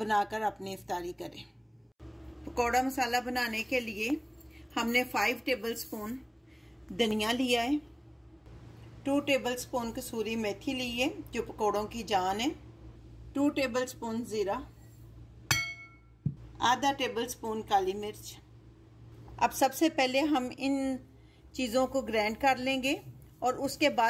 अपनी इफ्तारी करें। पकौड़ा मसाला बनाने के लिए हमने 5 टेबलस्पून धनिया लिया है, 2 टेबलस्पून कसूरी मेथी ली है जो पकौड़ों की जान है, 2 टेबलस्पून ज़ीरा, आधा टेबलस्पून काली मिर्च। अब सबसे पहले हम इन चीज़ों को ग्राइंड कर लेंगे और उसके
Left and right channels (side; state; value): both; identical; correlation 1.00